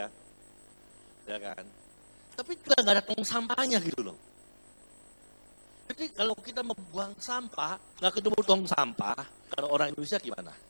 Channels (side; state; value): both; inverted; correlation -1.00